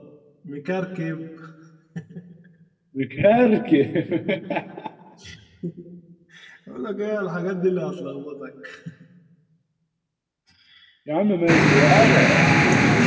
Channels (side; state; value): both; identical; correlation 1.00